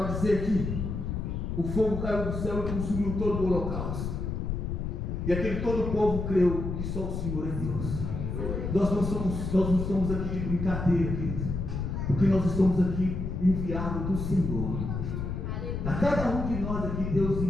vai dizer que o fogo caiu do céu e consumiu todo o holocausto. E aquele todo o povo creu que só o Senhor é Deus. Nós não estamos aqui de brincadeira, querido, porque nós estamos aqui enviados do Senhor. A cada um de nós aqui Deus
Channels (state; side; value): noise; left; rumble, 3 dB below the sound